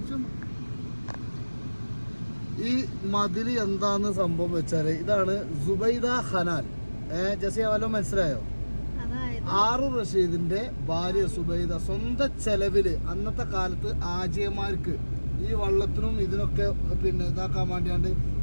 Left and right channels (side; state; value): both; inverted; correlation -1.00